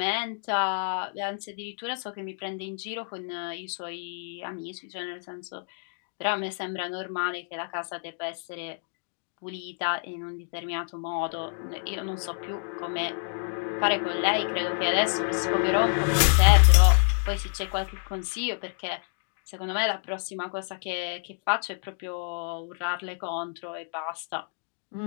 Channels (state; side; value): silent; right; 58 dB below the other